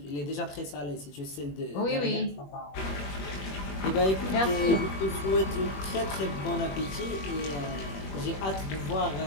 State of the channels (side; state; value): right; late; 21 ms